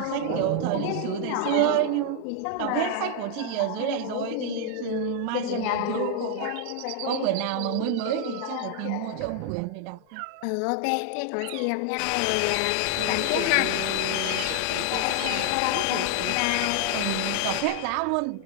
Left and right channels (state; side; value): different; both; correlation 0.00